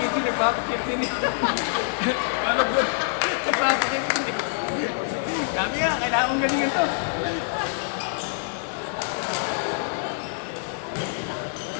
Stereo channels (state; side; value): silent; right; digital silence